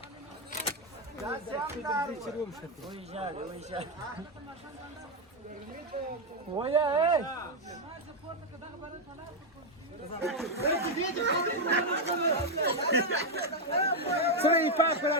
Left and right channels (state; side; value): normal; both; correlation 0.03